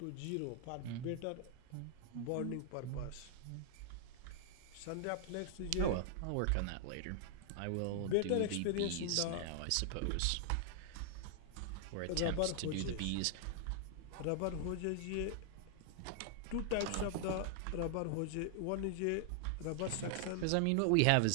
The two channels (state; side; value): different; both; correlation 0.00